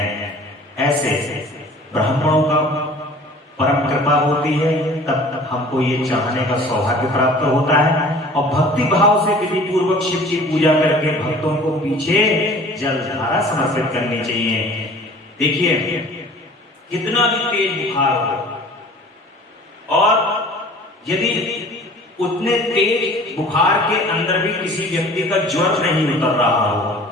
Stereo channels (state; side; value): normal; both; correlation 0.46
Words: ऐसे ब्राह्मणों का परम कृपा होती है, तब हमको ये चाहने का सौभाग्य प्राप्त होता है। और भक्ति भाव से विधि पूर्वक शिव की पूजा करके भक्तों को पीछे जलधारा समर्पित करनी चाहिए। देखिए, कितना भी तेज बुखार हो और यदि उतने तेज बुखार के अंदर भी किसी व्यक्ति का ज्वर नहीं उतर रहा हो